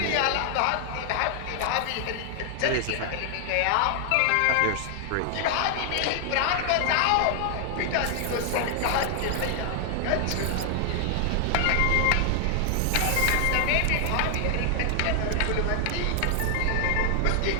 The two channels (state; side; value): different; both; correlation 0.00